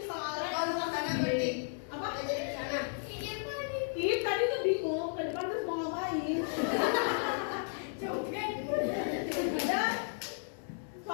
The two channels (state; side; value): silent; right; digital silence